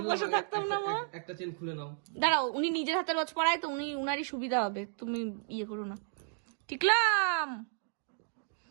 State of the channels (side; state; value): left; silent; digital silence